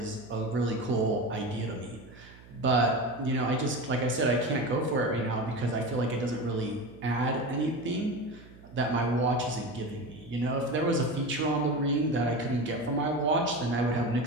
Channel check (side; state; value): right; noise; hum, 21 dB below the sound